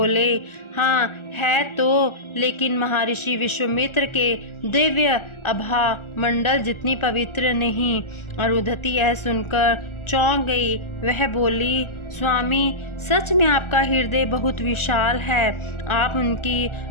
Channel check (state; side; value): late; right; 1.4 ms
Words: हाँ है तो, लेकिन महर्षि विश्वामित्र के दिव्य आभा मंडल जितनी पवित्र नहीं। अरुंधति यह सुनकर चौंक गई। वह बोली, स्वामी, सच में आपका हृदय बहुत विशाल है। आप उनकी